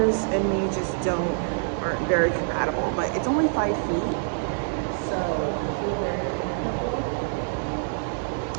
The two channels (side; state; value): left; silent; digital silence